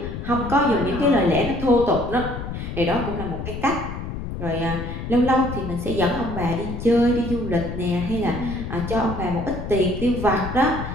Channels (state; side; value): noise; left; rumble, 7 dB below the sound